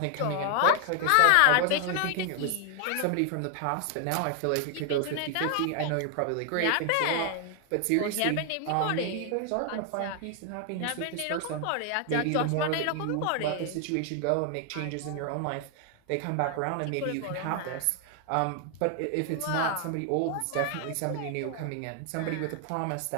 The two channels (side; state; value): both; different; correlation 0.00